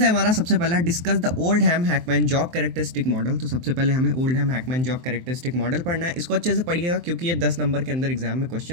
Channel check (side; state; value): left; late; 23 ms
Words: हमारा सबसे पहला, discuss the Oldham Hackman job characteristic model. तो सबसे पहले हमें Oldham Hackman job characteristic model पढ़ना है। इसको अच्छे से पढ़िएगा क्योंकि ये 10 नंबर के अंदर एग्जाम में